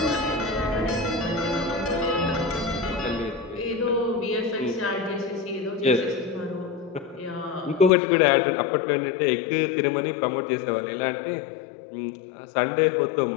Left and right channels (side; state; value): right; drops out; at 7.9 s